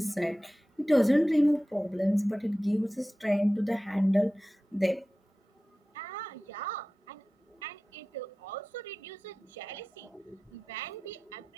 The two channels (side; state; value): both; normal; correlation 0.95